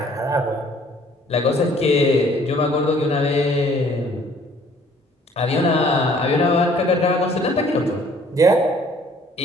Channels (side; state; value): both; normal; correlation 0.57